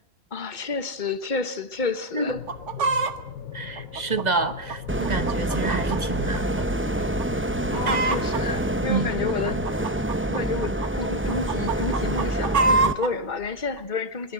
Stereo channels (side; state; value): both; normal; correlation 0.06